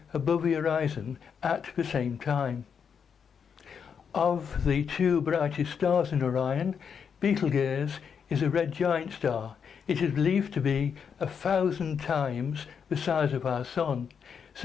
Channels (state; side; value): quieter; right; 6.9 dB